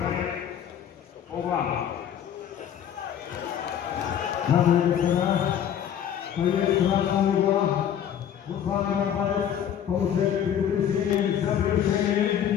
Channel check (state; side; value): quieter; right; 9.4 dB